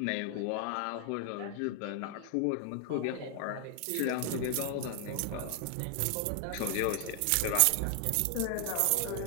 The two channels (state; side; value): different; both; correlation 0.00